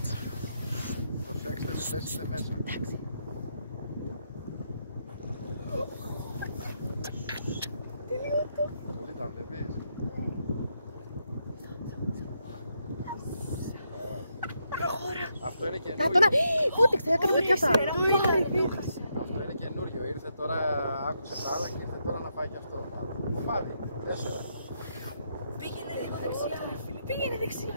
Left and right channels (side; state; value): both; inverted; correlation -0.79